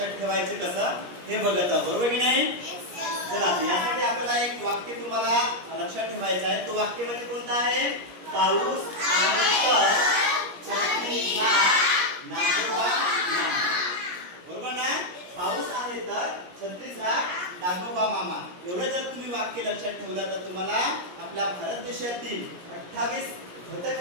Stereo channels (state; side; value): late; left; 17 ms